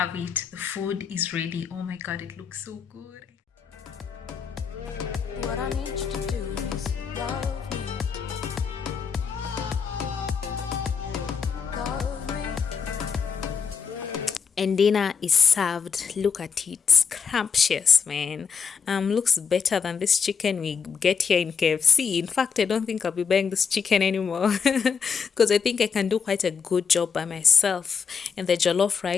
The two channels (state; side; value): quieter; right; 6.1 dB